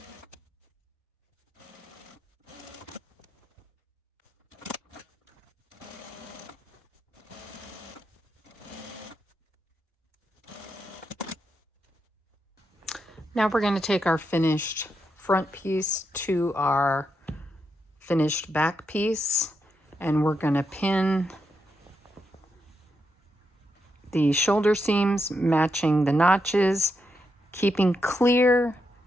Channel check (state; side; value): normal; both; correlation 0.83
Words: Now we're going to take our finished front piece to our finished back piece, and we're going to pin the shoulder seams matching the notches, keeping clear